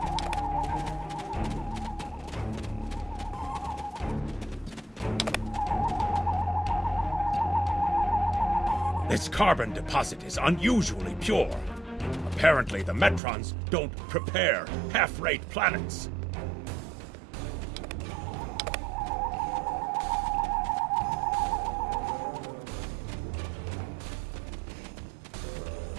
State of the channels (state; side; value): drops out; left; at 13.2 s